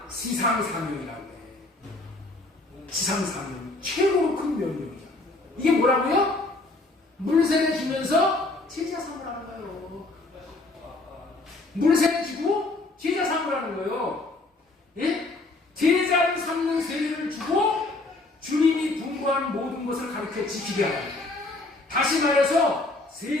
지상사명이라고 해. 지상사명. 최고로 큰 명령이야. 이게 뭐라고요? 물세례 주면서 제자 삼으라는 거예요. 물세례 주고 제자 삼으라는 거예요. 예? 제자를 삼는 세례를 주고 주님이 분부한 모든 것을 가르쳐 지키게 하라. 다시 말해서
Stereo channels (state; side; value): quieter; right; 3.0 dB